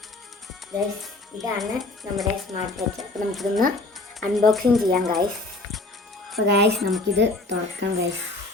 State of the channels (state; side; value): quieter; right; 3.0 dB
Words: ഗൈസ്, ഇതാണ് നമ്മുടെ സ്മാർട്ട് വാച്ച്. അപ്പോൾ നമുക്കിതൊന്ന് അൺബോക്സിങ് ചെയ്യാം ഗൈസ്. അപ്പോൾ ഗൈസ്, നമുക്കിത് തുറക്കാം ഗൈസ്.